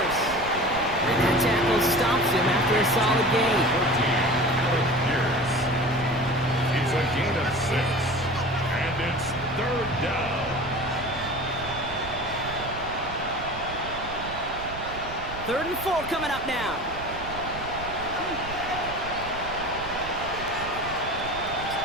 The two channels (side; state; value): right; noise; rumble, 12 dB below the sound